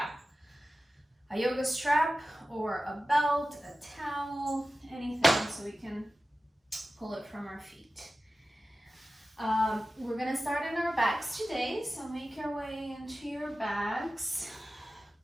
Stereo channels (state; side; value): normal; both; correlation 0.94